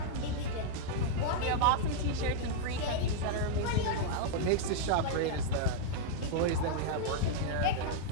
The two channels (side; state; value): both; different; correlation -0.01